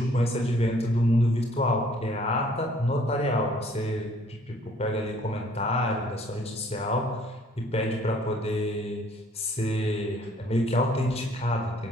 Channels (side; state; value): both; normal; correlation 0.59